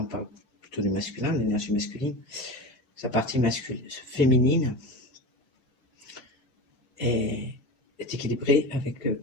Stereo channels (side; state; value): both; normal; correlation 0.28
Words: parle plutôt du masculin, de l'énergie masculine, sa partie féminine est équilibrée avec